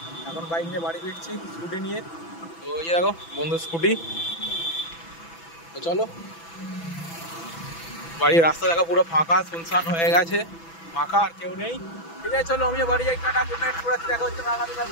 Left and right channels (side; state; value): right; late; 6.0 ms